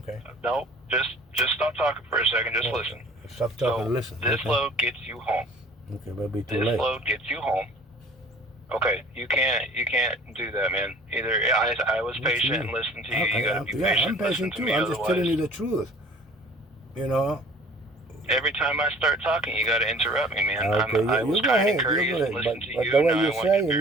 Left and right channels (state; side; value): normal; both; correlation 0.49